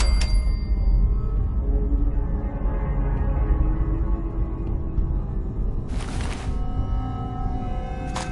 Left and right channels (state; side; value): identical; both; correlation 1.00